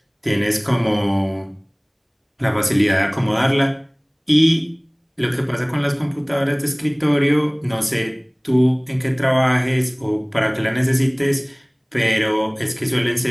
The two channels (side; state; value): both; identical; correlation 1.00